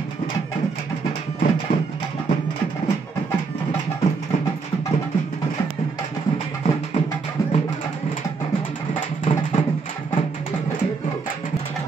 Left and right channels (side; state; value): left; quieter; 4.7 dB